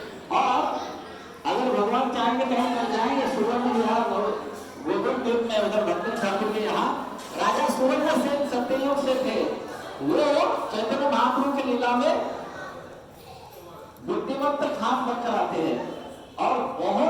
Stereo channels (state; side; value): identical; both; correlation 1.00